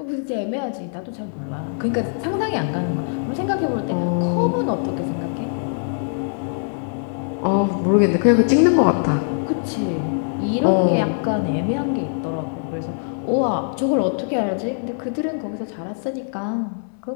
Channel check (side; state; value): right; silent; digital silence